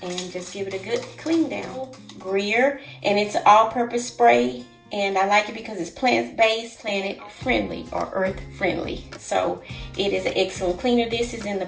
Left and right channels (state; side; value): identical; both; correlation 1.00